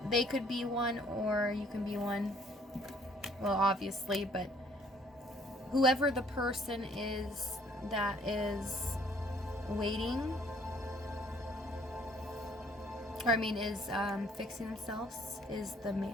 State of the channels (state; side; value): normal; both; correlation 0.61